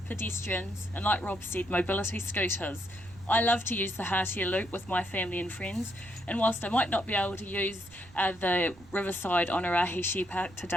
pedestrians, and like Rob said, mobility scooters. I love to use the Hatia Loop with my family and friends, and whilst I might not be able to use the Riverside Onerahi Shared Path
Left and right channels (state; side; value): noise; right; rumble, 23 dB below the sound